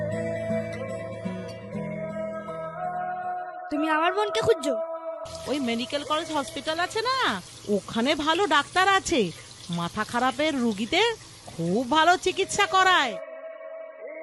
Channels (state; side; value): identical; both; correlation 1.00